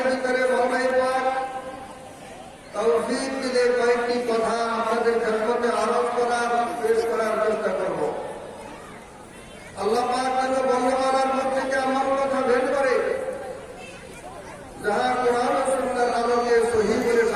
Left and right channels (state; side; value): identical; both; correlation 1.00